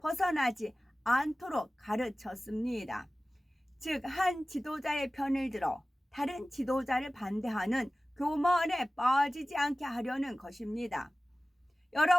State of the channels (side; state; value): both; normal; correlation 0.97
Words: 않도록 가르쳤습니다. 즉, 한 지도자의 편을 들어 다른 지도자를 반대하는 교만에 빠지지 않게 하려는 것입니다.